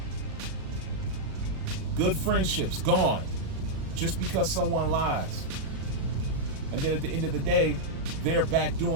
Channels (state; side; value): late; left; 36 ms